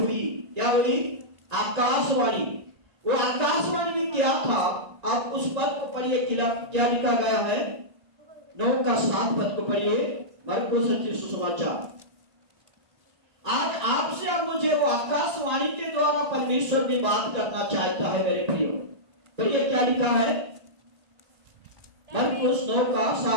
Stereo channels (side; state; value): left; late; 1.8 ms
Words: क्या हुई? आकाशवाणी। वो आकाशवाणी में क्या था? आप उस पद को पढ़िए, क्या लिखा गया है? 9 का 7 पद को पढ़िए, मरकुस रचित सुसमाचार। आज आपसे और मुझे वो आकाशवाणी के द्वारा परमेश्वर भी बात करना चाहता है मेरे प्रियो। पढ़िए क्या लिखा है? मरकुस 9 का